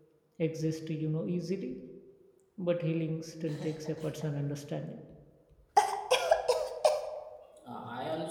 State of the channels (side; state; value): both; identical; correlation 1.00